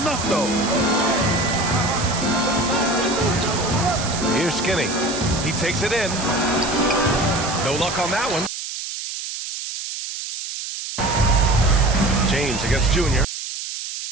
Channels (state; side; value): noise; right; hiss, 7 dB below the sound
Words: though? Here's Skinny. He takes it in. No luck on that one. James against Junior.